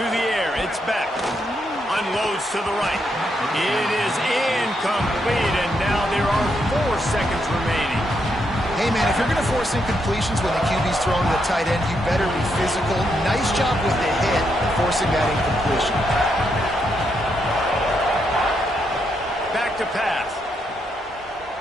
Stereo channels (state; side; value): normal; both; correlation 0.79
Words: To the air, it's back. Unloads to the right. It is incomplete, and now there are 4 seconds remaining. Hey, man, if you're going to force incompletions when the QB's throwing to the tight end, you better be physical. Nice job with the hit, forcing that incompletion. Back to pass.